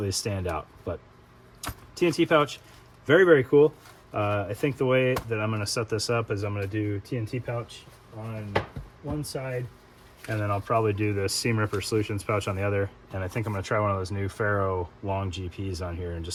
stand out. But TNT pouch, very, very cool. I think the way that I'm going to set this up is I'm going to do TNT pouch on one side, and then I'll probably do the Seam Ripper Solutions pouch on the other. And I think I'm going to try one of those new Ferro long GPs on here and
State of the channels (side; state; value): both; identical; correlation 1.00